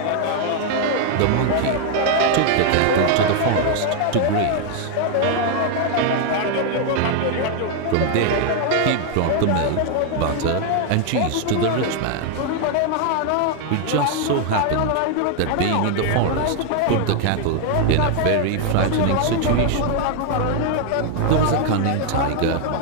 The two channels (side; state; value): both; different; correlation 0.00